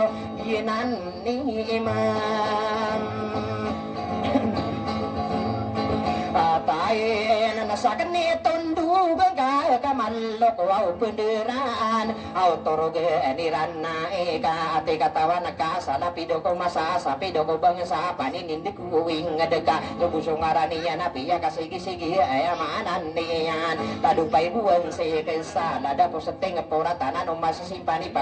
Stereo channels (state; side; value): identical; both; correlation 1.00